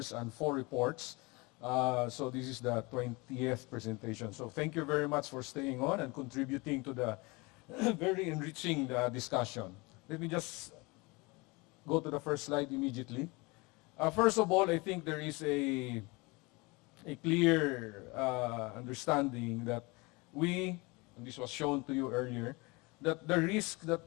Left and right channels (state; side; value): quieter; right; 25.8 dB